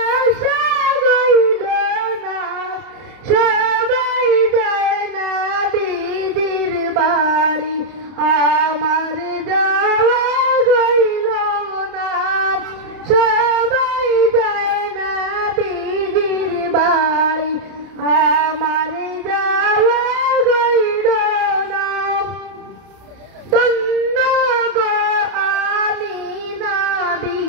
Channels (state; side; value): late; left; 30 ms